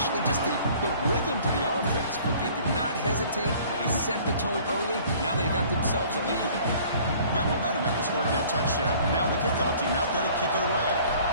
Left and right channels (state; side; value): inverted; both; correlation -0.52